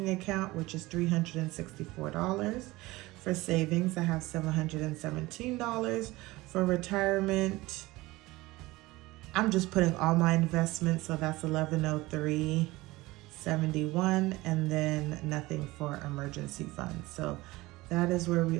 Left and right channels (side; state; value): left; quieter; 20.0 dB